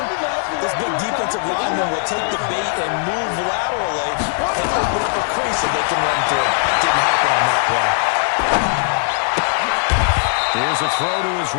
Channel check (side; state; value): right; silent; digital silence